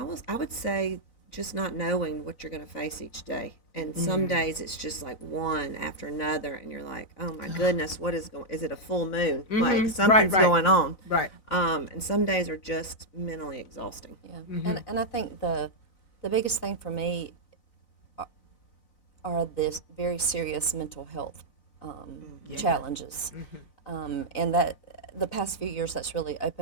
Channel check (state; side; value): late; right; 4.0 ms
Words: I would say just not knowing what you're going to face each day. And some days it's just like one after another, and you're like, oh my goodness, what is going? Is it a full moon? Like something's going on. Right. And some days are just mentally exhausting. Yeah. And I think the biggest thing for me are this very serious mental health challenges, and that the past few years that's really